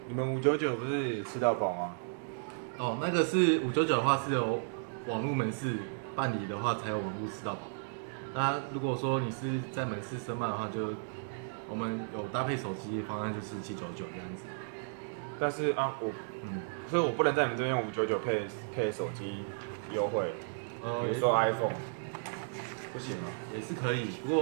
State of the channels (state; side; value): silent; left; digital silence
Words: 你们599不是吃到饱吗？哦，那个是599的话是由网络门市办理的话才有网络吃到饱。那如果说你是在门市申办的话，就我们有搭配手机方案就是799这样子。但是所以我不能在你们这边用599配手机优惠，比如说 iPhone，不行吗？也是可以，不